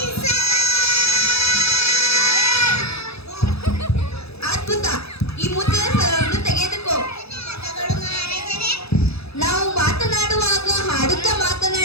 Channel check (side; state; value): right; late; 0.78 ms